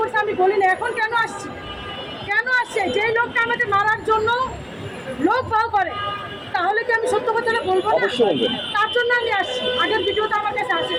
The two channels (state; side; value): identical; both; correlation 1.00